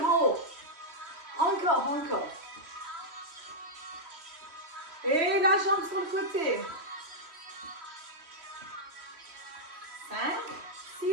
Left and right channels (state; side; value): late; left; 3.1 ms